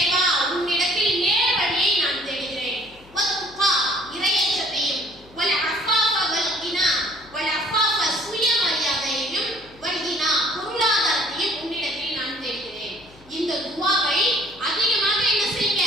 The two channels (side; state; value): left; noise; hum, 25 dB below the sound